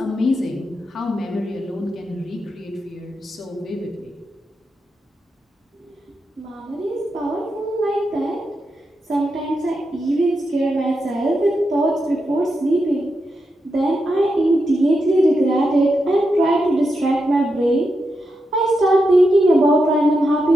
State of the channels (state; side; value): normal; both; correlation 0.86